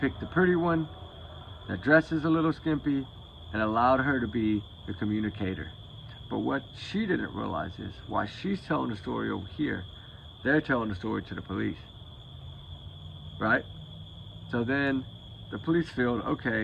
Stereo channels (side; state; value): both; identical; correlation 1.00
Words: the pretty one that dresses a little skimpy and allowed her to be the communicator. But what she didn't realize is, while she's telling the story over here, they're telling the story to the police, right? So then the police feel,